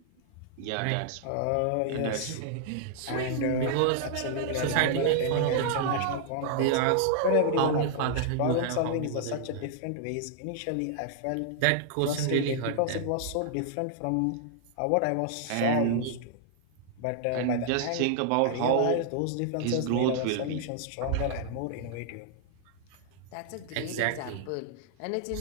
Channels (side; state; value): both; different; correlation -0.01